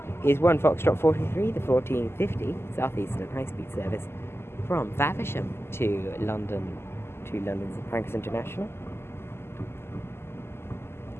is 1 Foxtrot 43, the 1450 Southeastern high-speed service from Faversham to London St Pancras International.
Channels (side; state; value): right; late; 0.12 ms